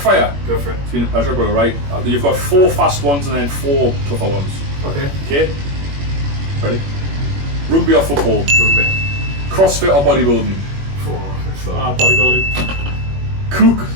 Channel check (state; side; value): late; left; 21 ms